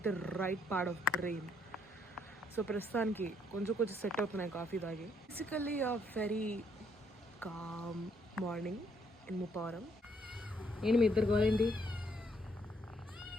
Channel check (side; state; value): both; normal; correlation 0.70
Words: the right part of brain. So ప్రస్తుతానికి కొంచెం సెట్ అవుతున్నాయి కాఫీ తాగి. Basically a very calm morning in Muppavaram. ఏంటి మీ ఇద్దరు గోలేంటి,